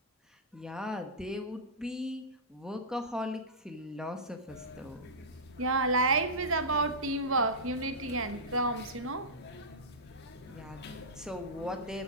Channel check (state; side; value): normal; both; correlation -0.14